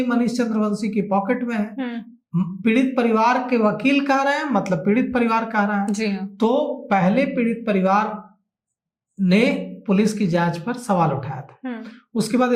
मनीष चंद्रवंशी की पॉकेट में है। पीड़ित परिवार के वकील कह रहे हैं, मतलब पीड़ित परिवार कह रहा है। तो पहले पीड़ित परिवार ने पुलिस की जांच पर सवाल उठाया था, उसके बाद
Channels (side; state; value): both; identical; correlation 1.00